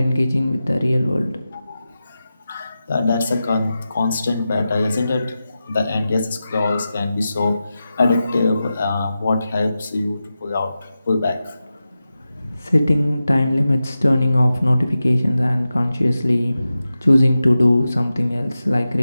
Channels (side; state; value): both; inverted; correlation -0.93